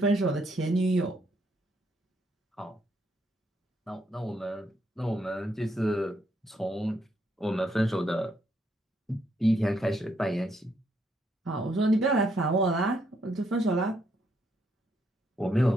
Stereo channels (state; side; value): normal; both; correlation 0.74